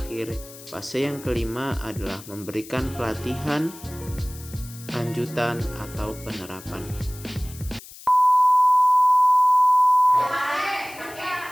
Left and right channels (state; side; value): noise; left; hiss, 18 dB below the sound